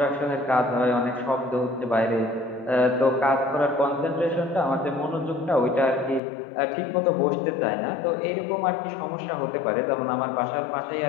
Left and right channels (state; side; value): drops out; right; at 6.2 s